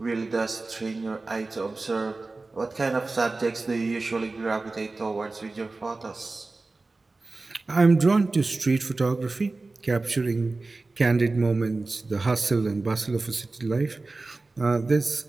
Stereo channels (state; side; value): quieter; left; 3.4 dB